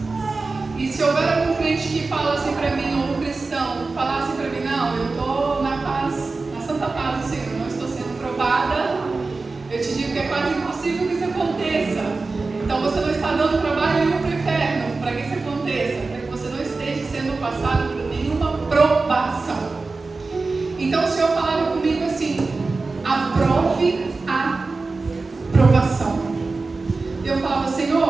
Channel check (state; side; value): quieter; left; 3.8 dB